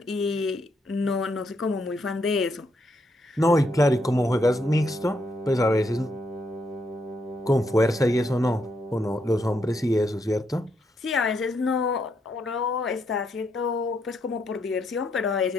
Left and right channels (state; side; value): normal; both; correlation 0.77